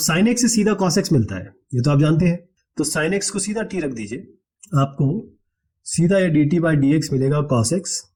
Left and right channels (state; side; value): identical; both; correlation 1.00